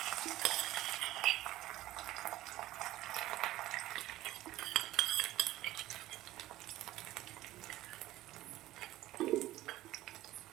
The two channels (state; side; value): quieter; left; 15.6 dB